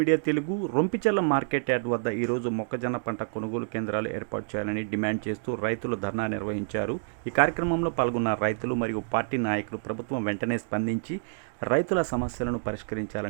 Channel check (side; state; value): left; silent; digital silence